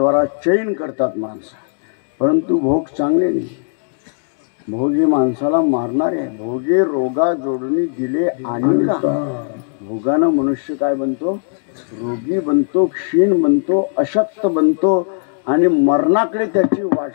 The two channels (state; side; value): silent; right; digital silence